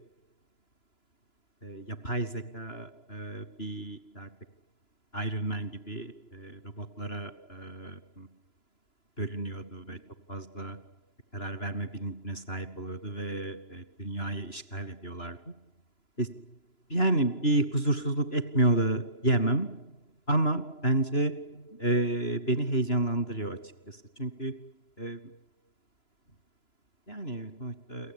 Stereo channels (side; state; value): right; late; 2.9 ms